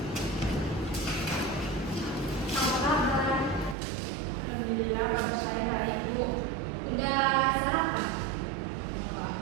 kabar? Alhamdulillah, kabar saya baik, Bu. Udah sarapan?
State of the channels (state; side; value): drops out; left; at 3.8 s